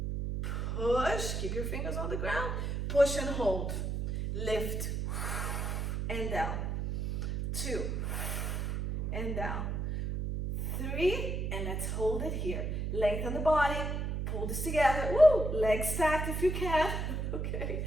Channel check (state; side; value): noise; right; hum, 1 dB below the sound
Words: Push. Keep your fingers on the ground. Push and hold. Lift. And down. 2. And down. 3. And let's hold it here. Lengthen the body. Pull this together. Woo! Legs stacked if you can. Okay.